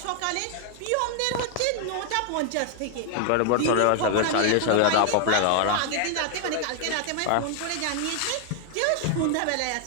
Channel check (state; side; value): different; both; correlation 0.00